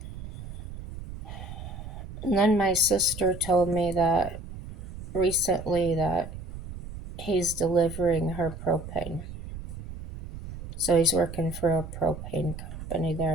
and then my sister told me that recently that he's delivering her propane. So he's working for a propane company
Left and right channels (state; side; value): noise; right; rumble, 11 dB below the sound